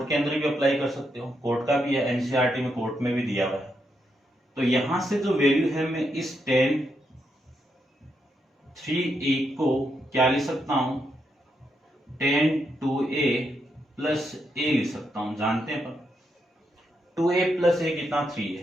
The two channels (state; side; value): normal; both; correlation 0.81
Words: के अंदर भी अप्लाई कर सकते हो, कोर्ट का भी है, एनसीईआरटी में कोर्ट में भी दिया हुआ है। तो यहां से जो वैल्यू है मैं इस टेन 3a को क्या लिख सकता हूं? टेन 2a प्लस a लिख सकता हूं। जानते हैं पर 2a प्लस a कितना? 3